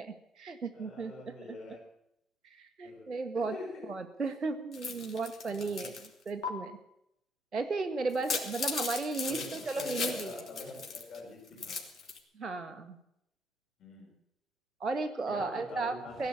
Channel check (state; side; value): normal; both; correlation 0.72